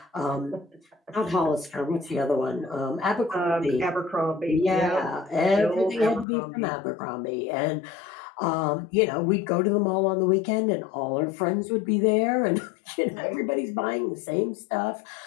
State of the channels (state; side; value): drops out; right; at 6.2 s